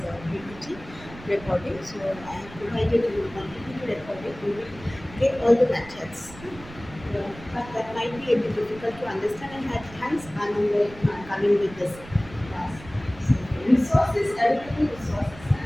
PPT recording. So I have provided you one PPT recording. You will get all the methods. But that might be a bit difficult to understand, and hence I'm coming with this class. So resources, everything resources,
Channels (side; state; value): right; noise; rumble, 17 dB below the sound